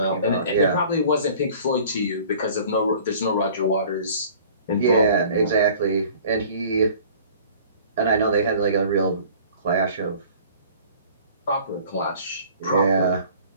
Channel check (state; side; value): inverted; both; correlation -0.49